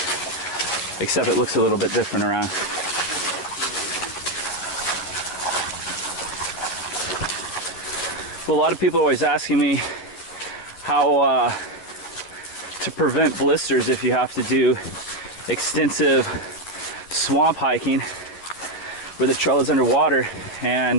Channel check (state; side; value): late; right; 11 ms